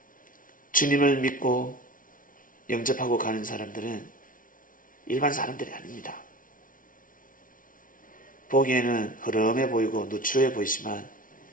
주님을 믿고 영접하고 가는 사람들은 일반 사람들이 아닙니다. 보기에는 흐름해 보이고 누추해 보이지만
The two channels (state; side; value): late; right; 0.39 ms